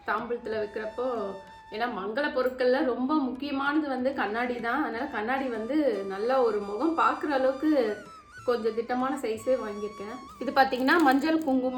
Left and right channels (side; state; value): both; identical; correlation 1.00